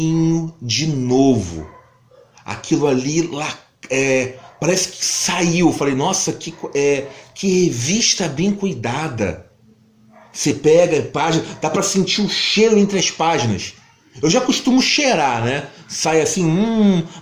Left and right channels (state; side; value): identical; both; correlation 1.00